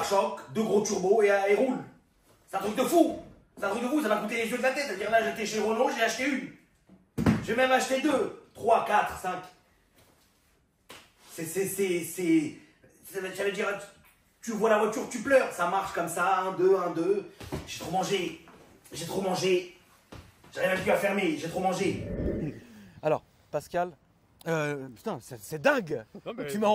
2 gros turbos et ils roulent. C'est un truc de fou. C'est un truc de fou. Ça m'a coûté les yeux de la tête. C'est-à-dire là, j'étais chez Renault, j'ai acheté une. J'ai même acheté 2, 3, 4, 5. Ça veut dire, tu vois la voiture, tu pleures. Ça marche comme ça, 1, 2, 1, 2. J'ai trop mangé. J'ai trop mangé. J'arrive même plus à fermer. J'ai trop mangé. Alors, Pascal, putain, c'est dingue. Non, mais tu m'as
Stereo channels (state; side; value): identical; both; correlation 1.00